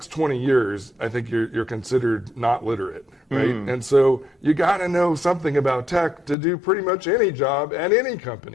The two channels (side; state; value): right; drops out; at 6.4 s